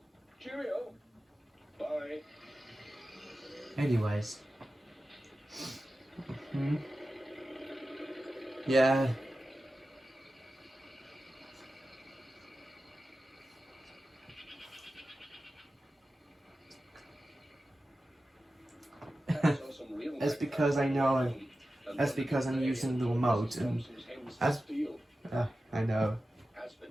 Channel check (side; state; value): both; normal; correlation 0.94